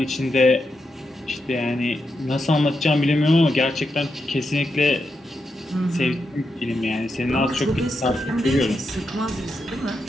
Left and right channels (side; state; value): both; normal; correlation 0.85